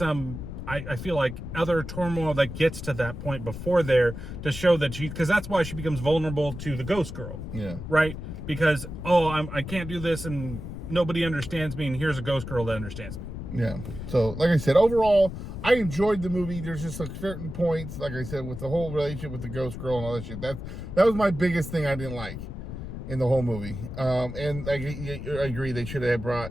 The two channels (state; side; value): noise; left; rumble, 8 dB below the sound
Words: I feel like other turmoil that gets to that point before there to show that because that's why she becomes vulnerable to the ghost girl. Yeah. Right? Because, I can't do this and nobody understands me, and here's a ghost girl that understands me. Yeah. So, like I said, overall, I enjoyed the movie. There's just like certain points, like I said, with the whole relationship with the ghost girl and all that shit. That was my biggest thing I didn't like in the whole movie. And I agree, they should have